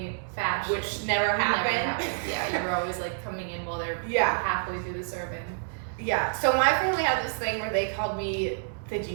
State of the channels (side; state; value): left; silent; digital silence